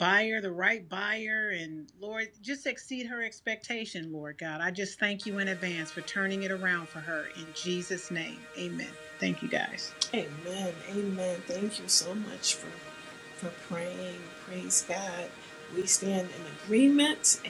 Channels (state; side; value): identical; both; correlation 1.00